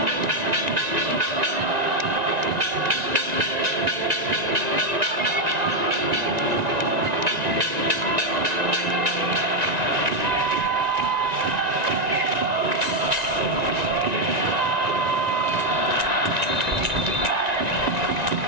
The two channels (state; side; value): late; left; 1.9 ms